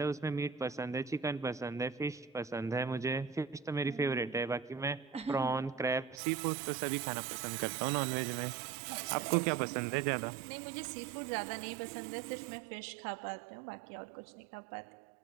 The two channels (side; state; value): left; drops out; at 6.2 s